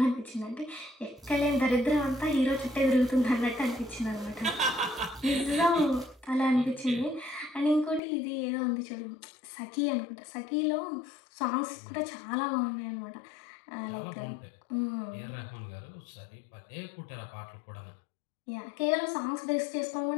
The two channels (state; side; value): drops out; right; at 8.0 s